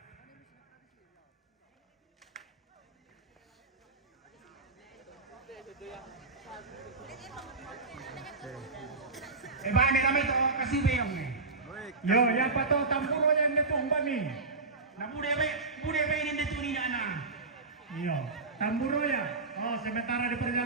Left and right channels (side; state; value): left; quieter; 3.7 dB